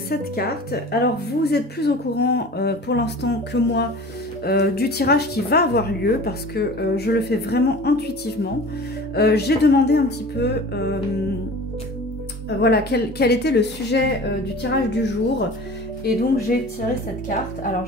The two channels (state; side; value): normal; both; correlation 0.40